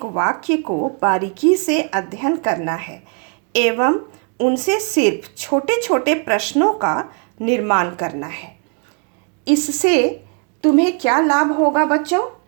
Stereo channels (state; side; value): quieter; left; 38.4 dB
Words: वाक्य को बारीकी से अध्ययन करना है एवं उनसे सिर्फ छोटे छोटे प्रश्नों का निर्माण करना है। इससे तुम्हें क्या लाभ होगा बच्चों?